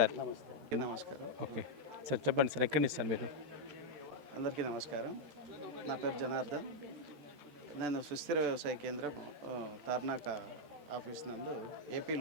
నమస్కారం. ఓకే సార్, చెప్పండి సార్, ఎక్కడి నుంచి సార్ మీరు? అందరికీ నమస్కారం. నా పేరు జనార్దన్. నేను సుస్థిర వ్యవసాయ కేంద్రం తార్నాక ఆఫీస్ నందు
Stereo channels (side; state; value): left; late; 14 ms